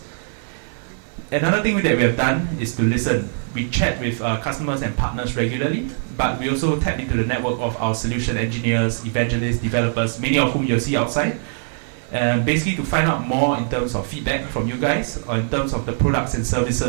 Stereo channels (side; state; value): left; silent; digital silence